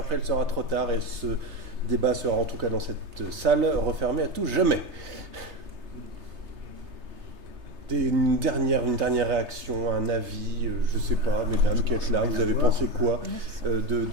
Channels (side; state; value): left; late; 3.3 ms